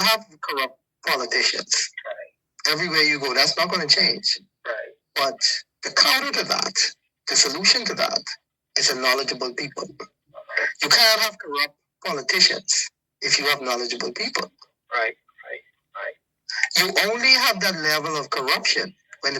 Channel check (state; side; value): identical; both; correlation 1.00